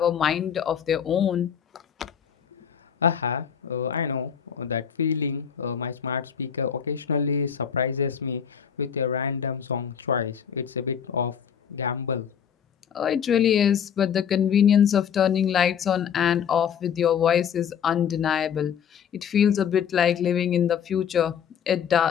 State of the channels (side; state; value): right; quieter; 8.0 dB